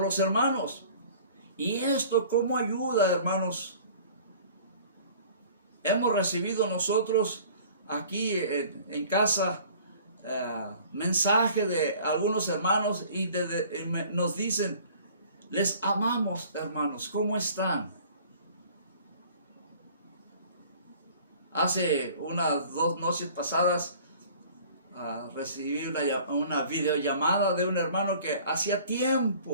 hermanos. ¿Y esto cómo ayuda, hermanos? Hemos recibido nosotros aquí en casa mensaje de algunos hermanos y nos dicen, les amamos, hermanos, ¿cómo están? Hace unas 2 noches pasadas recibí una videollamada de un hermano que hacía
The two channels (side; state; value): both; inverted; correlation -0.49